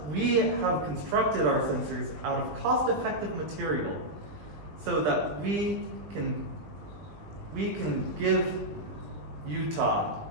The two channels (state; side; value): late; left; 20 ms